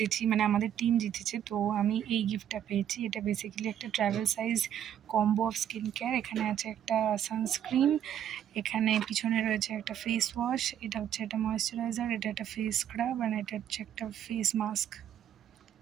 মানে আমাদের টিম জিতেছে। তো আমি এই গিফটটা পেয়েছি। এটা বেসিক্যালি একটা travel size combo of skin care. এখানে আছে একটা সানস্ক্রিন, এখানে পিছনে রয়েছে একটা ফেস ওয়াশ, এটা হচ্ছে একটা ময়েশ্চারাইজার, এটা একটা ফেস স্ক্রাব, আর এটা হচ্ছে একটা face mask.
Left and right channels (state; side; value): quieter; left; 10.1 dB